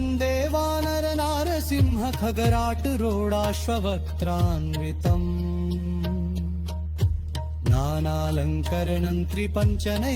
वानरनारसिंह खगराटरोडाश्ववक्त्रान्वितम् नानालङ्करणं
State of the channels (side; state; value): both; identical; correlation 1.00